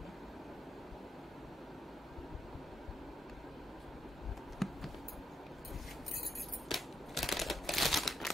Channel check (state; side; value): normal; both; correlation 0.81